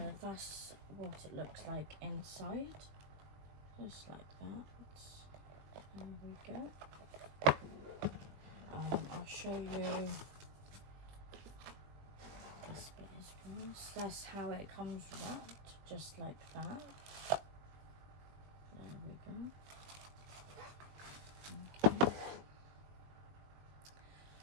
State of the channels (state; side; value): late; left; 20 ms